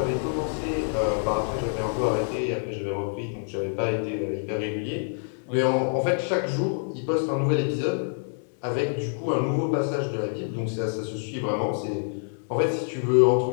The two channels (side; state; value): right; silent; digital silence